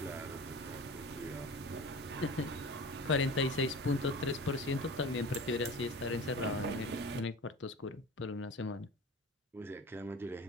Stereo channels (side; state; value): both; normal; correlation 0.36